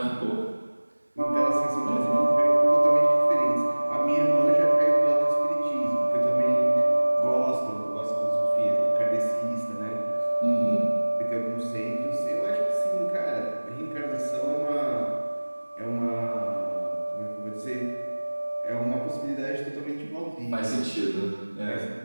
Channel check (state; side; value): inverted; both; correlation -1.00